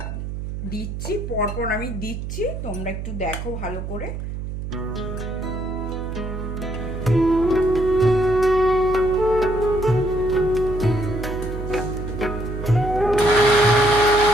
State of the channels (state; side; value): noise; right; hum, 6 dB below the sound